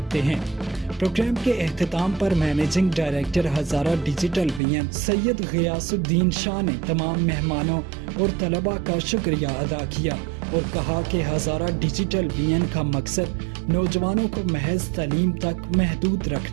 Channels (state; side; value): drops out; left; at 4.6 s